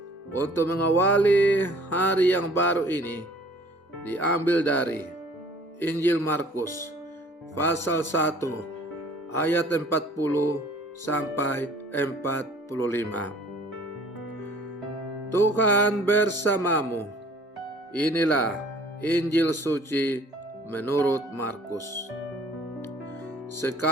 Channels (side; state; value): both; normal; correlation 0.53